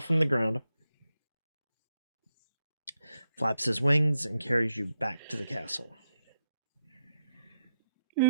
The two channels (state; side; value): inverted; both; correlation -0.84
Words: from the ground, flaps his wings, and carries you back to the castle.